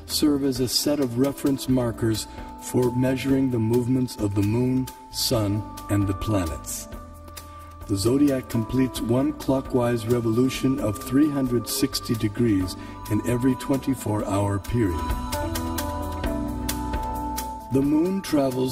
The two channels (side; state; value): both; identical; correlation 1.00